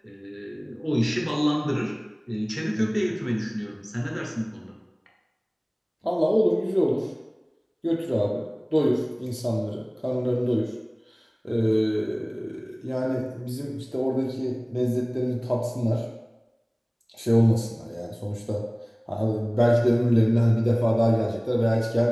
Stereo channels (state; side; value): identical; both; correlation 1.00